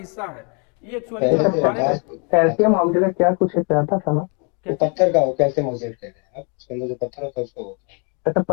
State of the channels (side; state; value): right; quieter; 35.8 dB